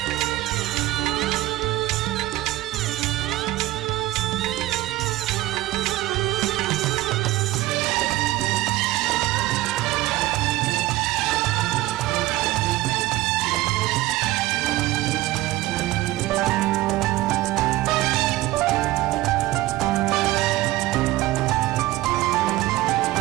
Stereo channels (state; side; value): quieter; left; 17.4 dB